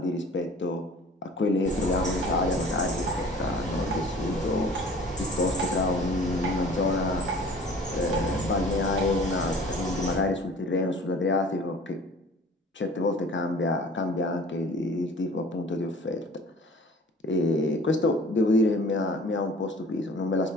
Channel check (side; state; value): both; normal; correlation 0.47